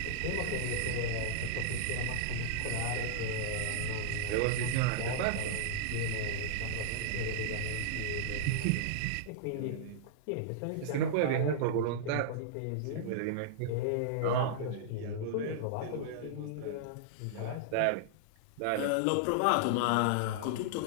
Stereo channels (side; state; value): both; different; correlation -0.01